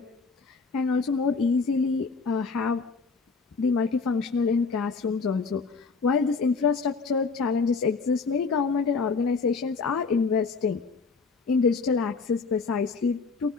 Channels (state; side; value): quieter; right; 4.6 dB